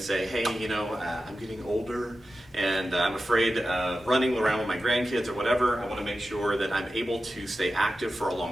say, hey, I'm getting older and I'm afraid of running around with my grandkids or whatever. I want to make sure that I'm able to stay active for a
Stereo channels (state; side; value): normal; both; correlation 0.92